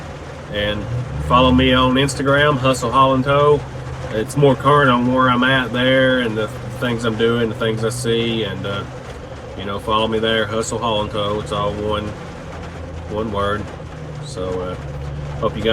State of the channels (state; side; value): identical; both; correlation 1.00